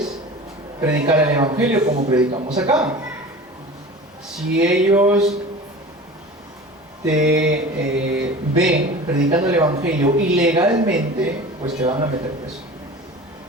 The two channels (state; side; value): normal; both; correlation 0.37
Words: predicar el evangelio como predicamos acá. Si ellos te ven predicando el evangelio ilegalmente, pues te van a meter preso.